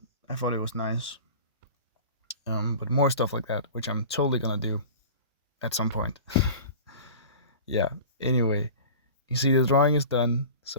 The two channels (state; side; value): inverted; both; correlation -0.38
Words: I thought it was nice. But more stuff like that, which I'm totally gonna do at some point. Yeah. Anyway, you see the drawing is done.